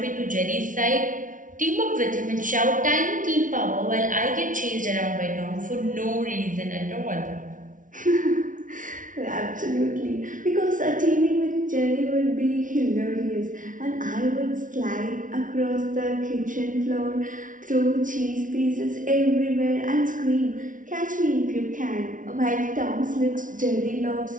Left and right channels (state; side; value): late; left; 0.38 ms